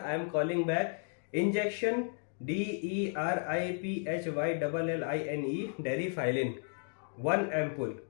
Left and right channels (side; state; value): right; silent; 55 dB below the other